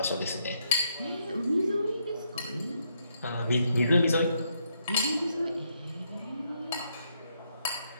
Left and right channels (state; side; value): inverted; both; correlation -0.76